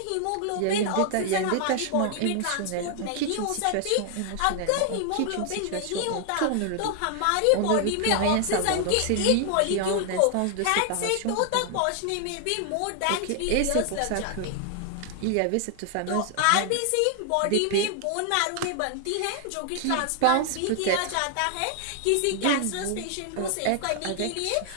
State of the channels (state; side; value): different; both; correlation 0.00